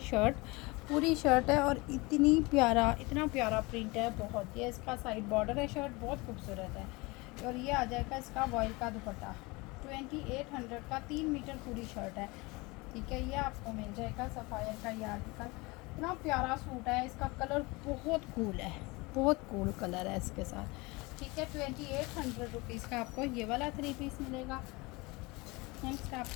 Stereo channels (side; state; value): right; quieter; 24.7 dB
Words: पूरी शर्ट है और इतना प्यारा प्रिंट है बहुत। ये इसका साइड बॉर्डर है, शर्ट बहुत खूबसूरत है। और ये आ जाएगा इसका वॉइल का दुपट्टा, 2800 का 3 मीटर पूरी शर्ट है, ठीक है। ये आपको मिल जाएगा सफ़ायर का ये आर्टिकल, इतना प्यारा सूट है, इसका कलर बहुत कूल है, बहुत कूल कलर है इसके साथ, ठीक है। 2800 रुपीज़ का आपको ये वाला 3 पीस मिलेगा। नेक्स्ट